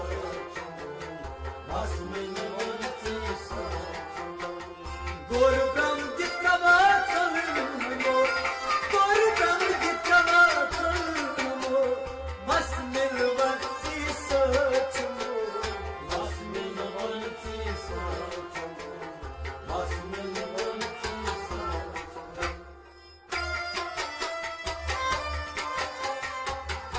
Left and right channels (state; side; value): identical; both; correlation 1.00